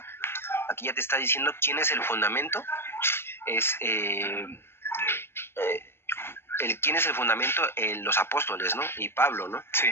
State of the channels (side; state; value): right; late; 0.12 ms